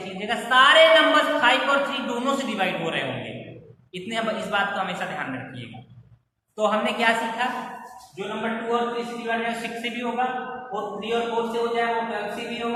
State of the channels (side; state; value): both; identical; correlation 1.00